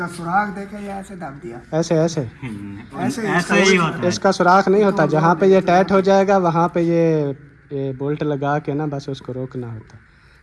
सुराख देखे या ऐसे दब दिया, ऐसे ऐसे ऐसे ही होता है। इसका सुराख नहीं होता, जहाँ पे ये टाइट हो जाएगा वहाँ पे ये बोल्ट लगा के ना बस उसको रोकना होता,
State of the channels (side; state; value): both; identical; correlation 1.00